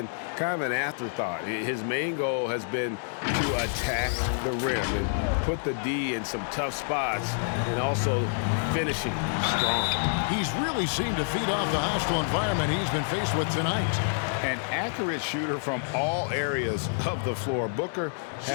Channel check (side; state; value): right; silent; digital silence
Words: kind of an afterthought. His main goal has been to attack the rim and put the D in some tough spots and also finishing strong. He's really seemed to feed off the hostile environment he's been faced with tonight. An accurate shooter from all areas of the floor. Booker